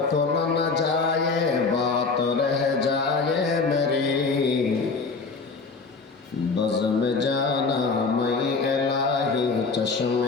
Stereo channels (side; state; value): right; quieter; 4.4 dB